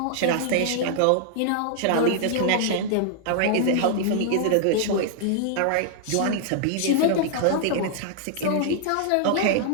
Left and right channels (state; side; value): different; both; correlation -0.01